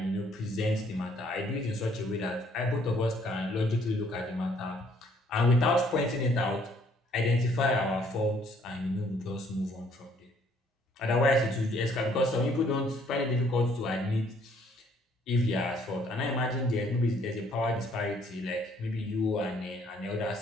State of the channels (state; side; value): normal; both; correlation 0.63